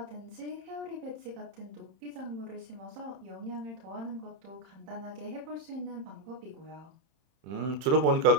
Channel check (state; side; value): late; left; 31 ms